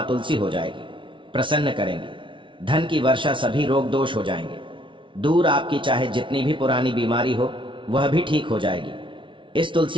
तुलसी हो जाएगी, प्रसन्न करेंगी। धन की वर्षा, सभी रोग दोष हो जाएंगे दूर। आपकी चाहे जितनी भी पुरानी बीमारी हो वह भी ठीक हो जाएगी इस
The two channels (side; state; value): left; late; 0.25 ms